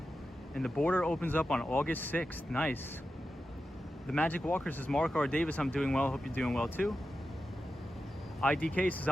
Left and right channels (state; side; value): normal; both; correlation 0.91